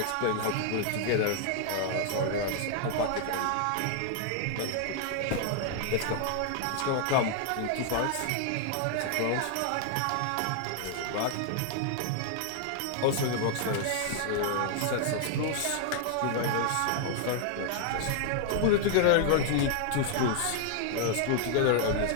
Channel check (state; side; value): different; both; correlation 0.00